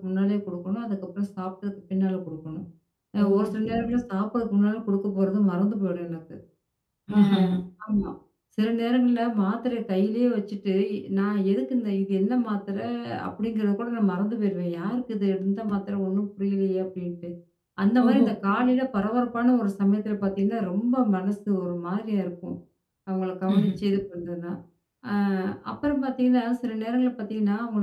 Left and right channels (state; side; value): identical; both; correlation 1.00